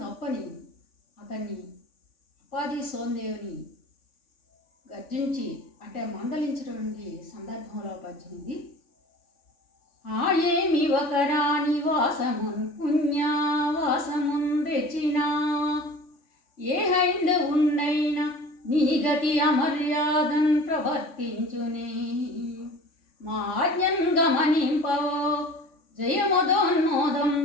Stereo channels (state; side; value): late; right; 3.5 ms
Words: తప్పని అతన్ని అప్పాజీ సోందేవ్ని గర్జించి అంటే మందలించినటువంటి సందర్భంలో పద్యమిది. ఏమి ఒక రాణి వాసమున్ పుణ్యవాసమున్ తెచ్చినా, ఏ హైందవున్నైనా నీ గతి అమర్యాదన్ ప్రవర్తించునే, మా ఆజ్ఞన్ గమనింపవో